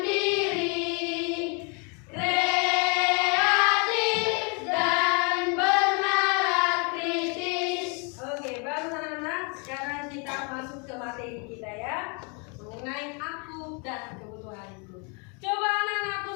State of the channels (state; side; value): quieter; right; 34.5 dB